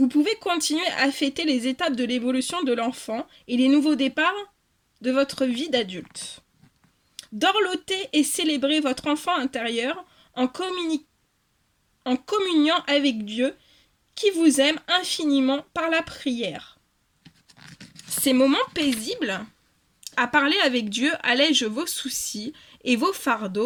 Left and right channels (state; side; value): identical; both; correlation 1.00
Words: pouvez continuer à fêter les étapes de l'évolution de l'enfant et les nouveaux départs de votre vie d'adulte. Dorloter et célébrer votre enfant intérieur en communiant avec Dieu qui vous aime infiniment par la prière. Ces moments paisibles à parler avec Dieu allègent vos soucis et vos